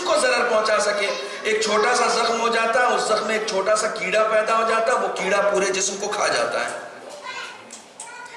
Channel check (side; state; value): both; identical; correlation 1.00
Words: کو ضرر پہنچا سکے۔ ایک چھوٹا سا زخم ہو جاتا، اس زخم میں ایک چھوٹا سا کیڑا پیدا ہو جاتا، وہ کیڑا پورے جسم کو کھا جاتا ہے۔